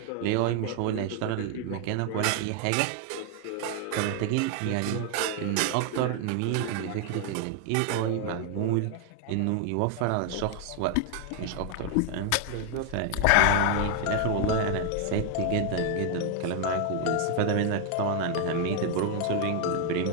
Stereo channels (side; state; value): both; different; correlation 0.01